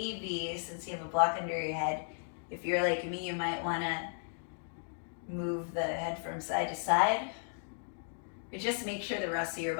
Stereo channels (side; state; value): right; silent; digital silence